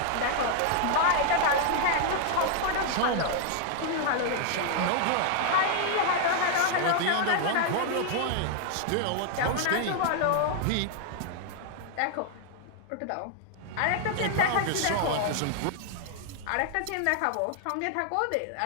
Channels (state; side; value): different; both; correlation 0.00